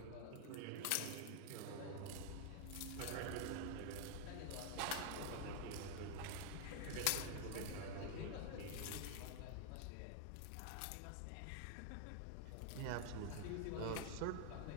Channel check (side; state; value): both; different; correlation 0.00